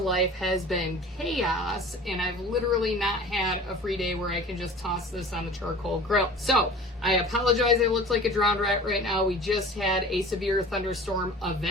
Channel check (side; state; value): both; normal; correlation 0.42